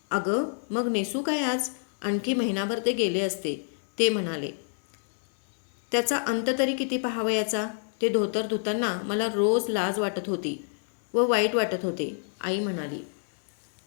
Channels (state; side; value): silent; right; digital silence